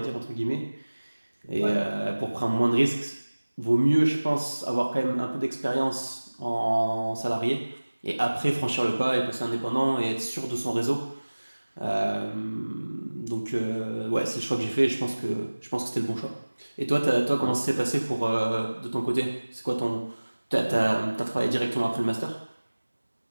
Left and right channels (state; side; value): inverted; both; correlation -1.00